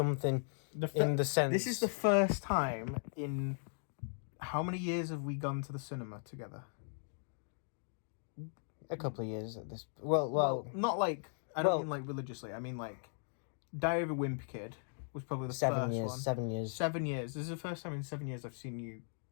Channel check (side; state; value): right; silent; digital silence